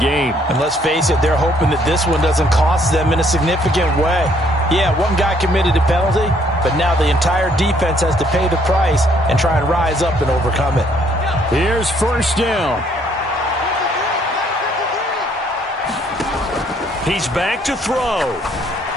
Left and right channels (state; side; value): normal; both; correlation 0.66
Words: And let's face it, they're hoping that this one doesn't cost them in a significant way. Yeah, one guy committed a penalty, but now the entire defense has to pay the price and try and rise up and overcome it. Here's 1st down. He's back to throw.